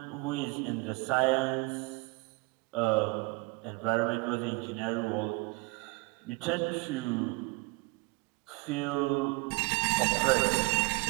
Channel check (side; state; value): left; quieter; 26.0 dB